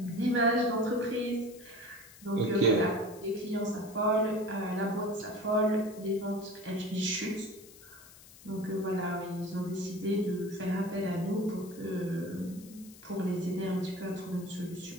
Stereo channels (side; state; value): left; noise; hiss, 21 dB below the sound